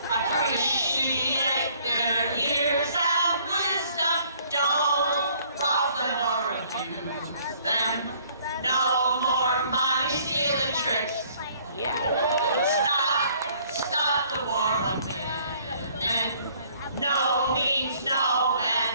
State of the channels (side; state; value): both; inverted; correlation -0.60